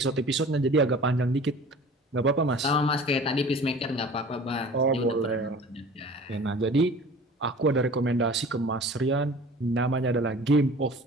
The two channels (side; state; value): both; normal; correlation 0.43